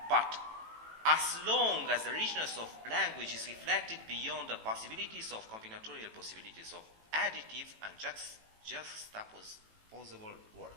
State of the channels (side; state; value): left; late; 18 ms